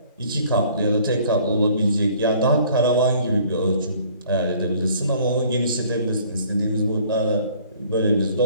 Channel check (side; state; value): both; inverted; correlation -0.56